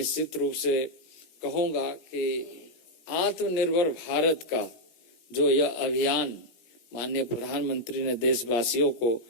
रूप से कहूंगा कि आत्मनिर्भर भारत का जो यह अभियान माननीय प्रधानमंत्री ने देशवासियों को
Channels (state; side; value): late; right; 17 ms